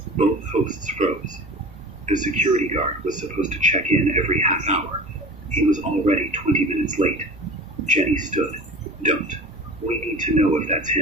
Both hosts froze. The security guard was supposed to check in every half hour. He was already 20 minutes late. Jenny stood. Don't. We need to know if that's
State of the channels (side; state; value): both; normal; correlation 0.37